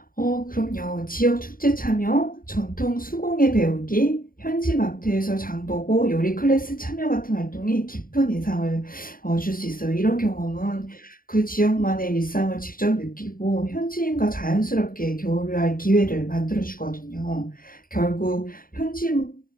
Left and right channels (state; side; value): late; right; 0.41 ms